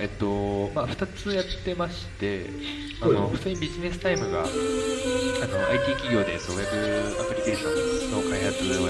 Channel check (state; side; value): identical; both; correlation 1.00